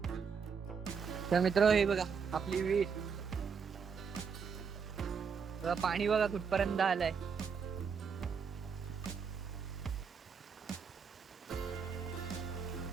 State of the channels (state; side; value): quieter; left; 6.1 dB